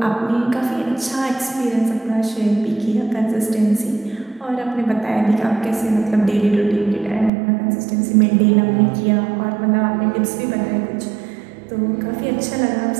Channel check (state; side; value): drops out; left; at 7.3 s